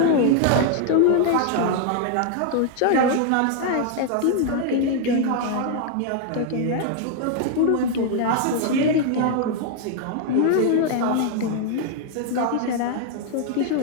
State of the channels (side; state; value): both; different; correlation 0.00